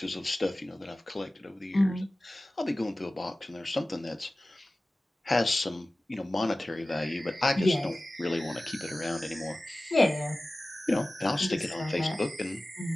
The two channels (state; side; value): normal; both; correlation 0.97